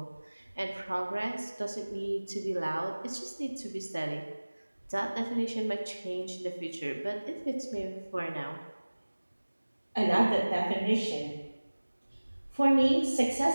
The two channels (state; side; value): inverted; both; correlation -1.00